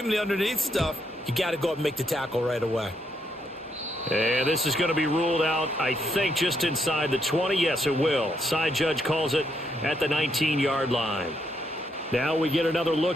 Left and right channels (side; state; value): both; normal; correlation 0.76